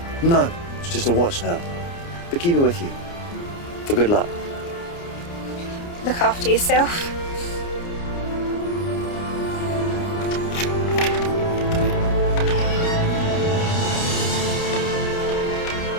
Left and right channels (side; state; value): right; late; 29 ms